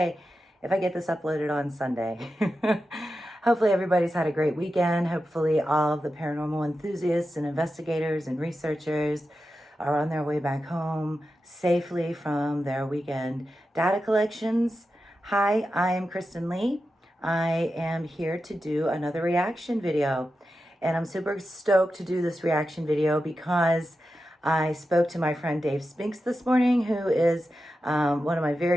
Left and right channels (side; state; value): both; normal; correlation 0.91